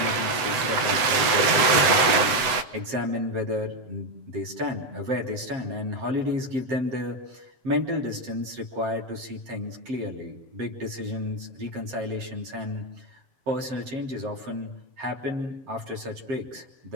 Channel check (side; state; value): left; late; 7.8 ms